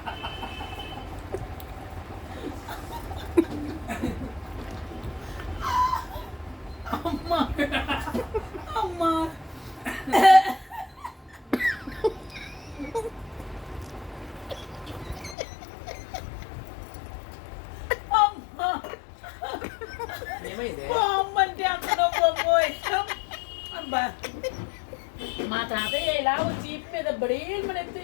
అమ్మా అమ్మా అమ్మంటే అందరూ మా తాతయ్య ఇలా చీప్ మీద బడేలు మన ఎత్తి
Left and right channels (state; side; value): drops out; right; at 15.4 s